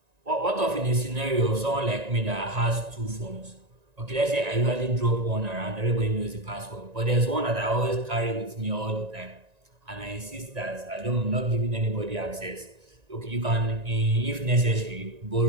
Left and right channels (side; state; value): left; late; 1.9 ms